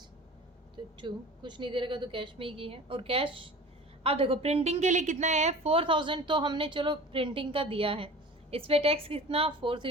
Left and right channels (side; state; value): both; normal; correlation 0.39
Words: तो टू कुछ नहीं दे रखा तो कैश में ही की है, और कैश। अब देखो प्रिंटिंग के लिए कितना है, 4,000, तो हमने चलो प्रिंटिंग का दिया है, इस पर टैक्स कितना, 4